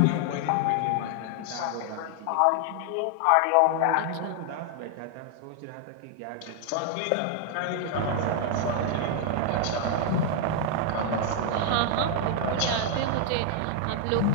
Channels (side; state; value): both; different; correlation 0.00